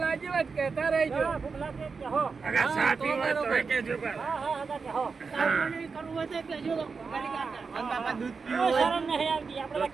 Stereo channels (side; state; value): left; quieter; 5.0 dB